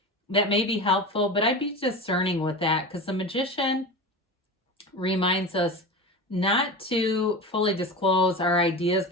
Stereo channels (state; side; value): normal; both; correlation 0.27